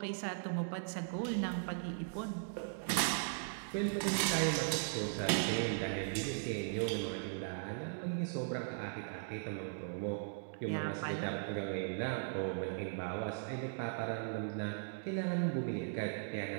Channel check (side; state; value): left; silent; digital silence